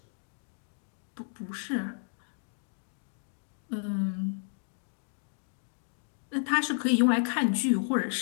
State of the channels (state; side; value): silent; right; 56 dB below the other